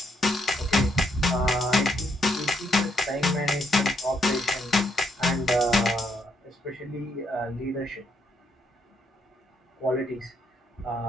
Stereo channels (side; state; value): both; normal; correlation 0.75